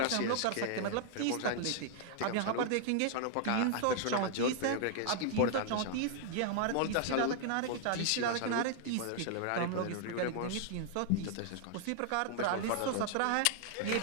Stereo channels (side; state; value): both; different; correlation 0.00